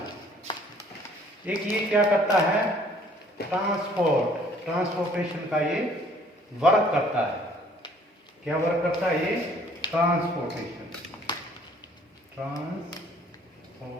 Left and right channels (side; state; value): both; normal; correlation 0.58